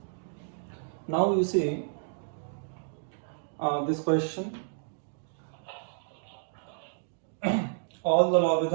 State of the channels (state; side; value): silent; left; digital silence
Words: Now you see this question. All the